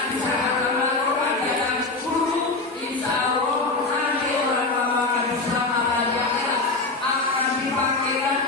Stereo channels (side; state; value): right; quieter; 3.4 dB